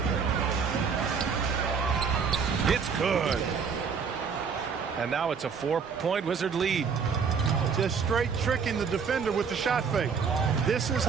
It's good. And now it's a 4-point Wizard lead. Just straight tricking the defender with the shot fake. This is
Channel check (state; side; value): quieter; left; 6.0 dB